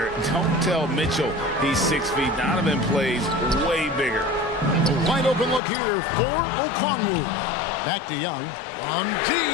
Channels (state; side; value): drops out; right; at 5.6 s